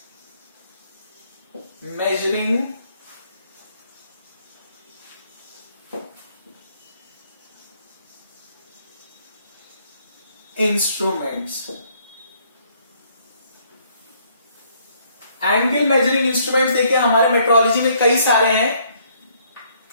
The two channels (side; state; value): both; inverted; correlation -0.66